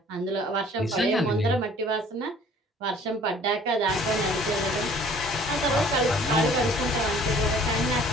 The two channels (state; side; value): normal; both; correlation 0.53